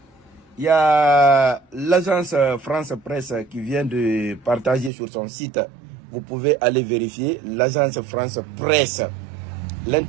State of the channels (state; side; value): drops out; left; at 4.9 s